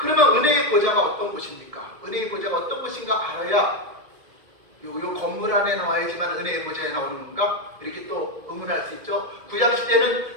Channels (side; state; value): left; late; 1.7 ms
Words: 은혜의 보좌가 어떤 곳입니까? 은혜의 보좌가 어떤 곳인가 알아야 요 건물 안에 나와야지만 은혜의 보좌에 나오는 건가? 이렇게 또 의문할 수 있죠. 구약시대는